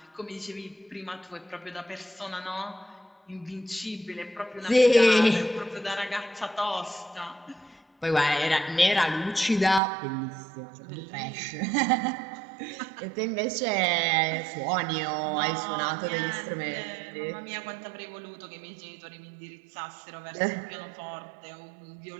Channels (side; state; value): left; drops out; at 9.8 s